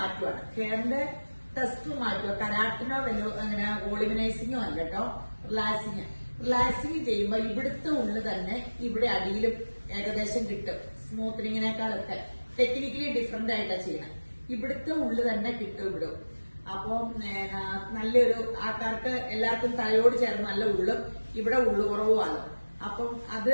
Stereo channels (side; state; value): both; inverted; correlation -1.00